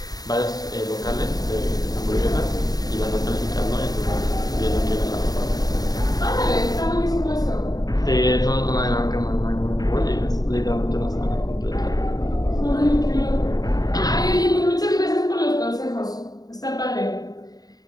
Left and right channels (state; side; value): late; right; 0.18 ms